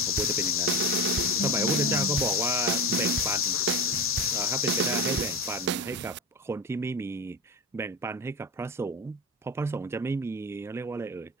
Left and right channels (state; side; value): normal; both; correlation 0.20